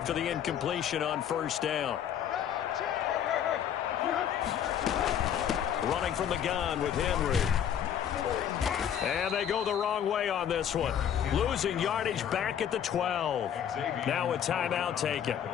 the incompletion on 1st down. Running from the gun with Henry. And they go the wrong way on this one. Losing yardage back at the 12. Now a timeout taken.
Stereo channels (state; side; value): quieter; right; 9.3 dB